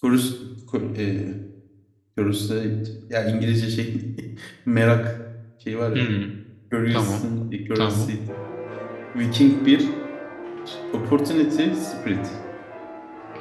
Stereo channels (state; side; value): identical; both; correlation 1.00